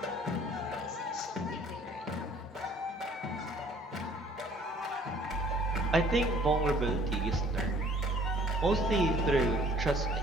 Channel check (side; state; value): both; normal; correlation 0.55